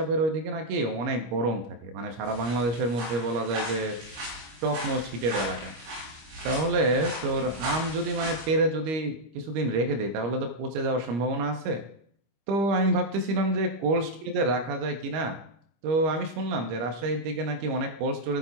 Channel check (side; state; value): left; late; 25 ms